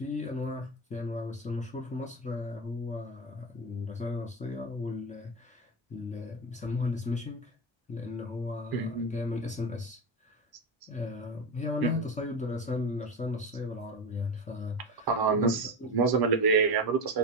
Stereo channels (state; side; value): normal; both; correlation 0.18